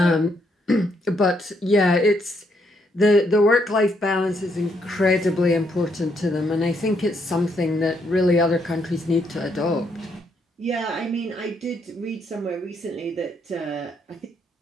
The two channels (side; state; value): both; normal; correlation 0.74